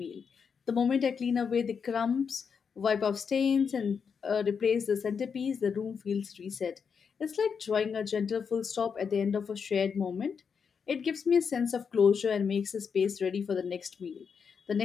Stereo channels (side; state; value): right; quieter; 6.3 dB